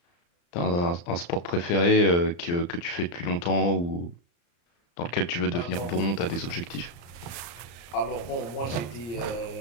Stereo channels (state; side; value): late; right; 35 ms